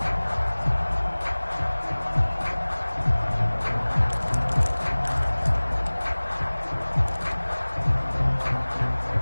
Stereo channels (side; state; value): both; inverted; correlation -1.00